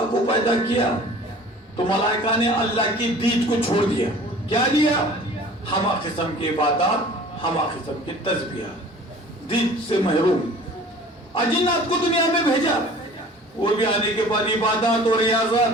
کو پیدا کیا تو ملائکہ نے اللہ کی دید کو چھوڑ دیا کیا دیا ہمہ قسم کی عبادات ہمہ قسم کی تسبیحات دید سے محروم اجنات کو دنیا میں بھیجا وہ بھی آنے کے بعد عبادات اور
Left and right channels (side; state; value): both; normal; correlation 0.46